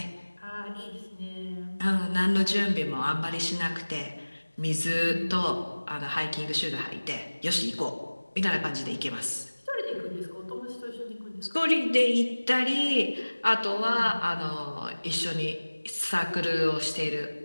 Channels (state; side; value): inverted; both; correlation -1.00